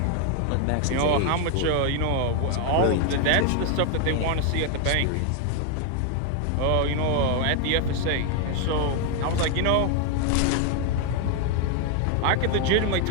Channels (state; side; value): different; both; correlation 0.00